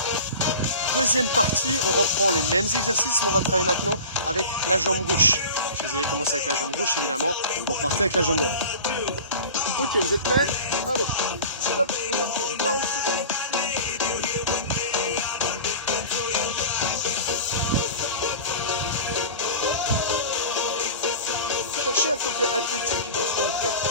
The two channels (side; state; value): both; inverted; correlation -0.36